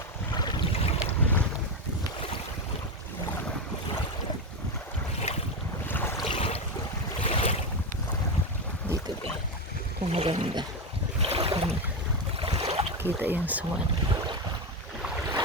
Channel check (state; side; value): normal; both; correlation 0.13